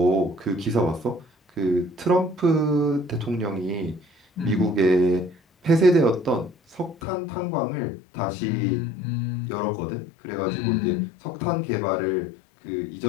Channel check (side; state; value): right; drops out; at 7.0 s